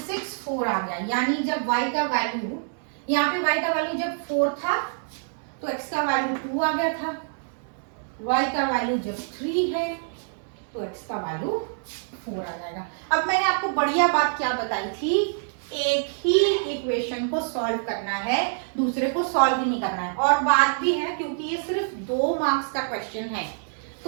6 4 आ गया, यानी जब y का वैल्यू, यहाँ पे y का वैल्यू जब 4 था तो x का वैल्यू 2 आ गया था, y का वैल्यू जब 3 है तो x का वैल्यू 4 आ जाएगा। अब मैंने आपको बढ़िया बात क्या बताई थी, एक ही इक्वेशन को सॉल्व करना है, दूसरे को सॉल्व ही नहीं करना है। और बात भी है क्योंकि ये सिर्फ 2 मार्क्स का क्वेश्चन है,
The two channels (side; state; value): left; silent; 59 dB below the other